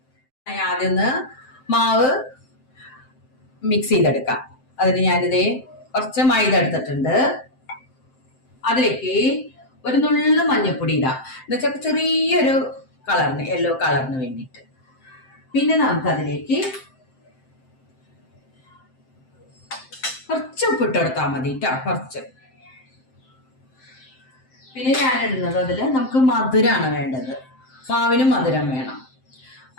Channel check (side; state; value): right; late; 7.7 ms